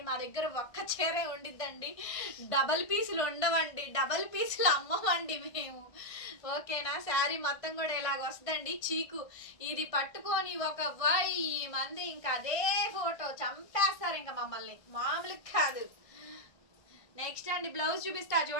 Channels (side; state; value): right; late; 1.5 ms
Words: మా దగ్గర ఒక్క చీరే ఉండిద్దండి, డబల్ పీసులు ఉండవండి, డబల్ పీసులు అమ్మవండి మేము, ఓకేనా. శారీ మొత్తం కూడా ఇలాగ వస్తుందండి. చీకు ఇది పట్టుకొని ఒక 1000 మంది ఇంకా అదే ఫోటో చంపేస్తారు ఇంకా మమ్మల్ని, మామూలు కాదు. నెక్స్ట్ అండి బ్లౌజ్ చూపిస్తా